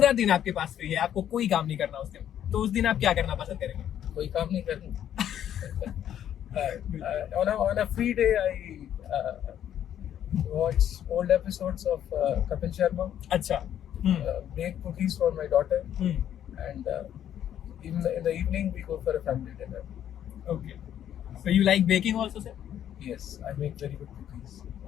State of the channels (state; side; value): quieter; right; 10.4 dB